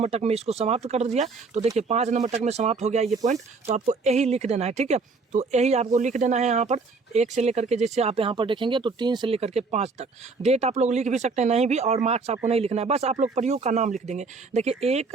तक में इसको समाप्त कर दिया। तो देखिए 5 नंबर तक में समाप्त हो गया ये पॉइंट, तो आपको यही लिख देना है, ठीक है। तो यही आपको लिख देना है यहाँ पर 1 से लेकर के, जैसे आप यहाँ पर देखेंगे तो 3 से लेकर के 5 तक। डेट आप लोग लिख भी सकते हैं नहीं भी, और मार्क्स आपको नहीं लिखना है, बस आप लोग प्रयोग का नाम लिख देंगे। देखिए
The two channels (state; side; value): quieter; left; 4.3 dB